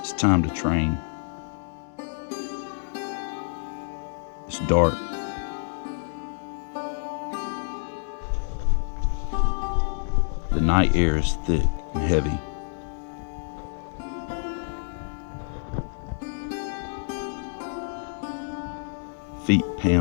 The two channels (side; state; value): right; silent; 60 dB below the other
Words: It's time to train. It's dark. The night air is thick and heavy. Feet